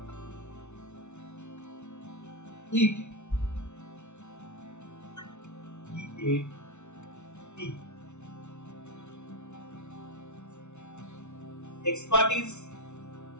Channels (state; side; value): late; right; 0.82 ms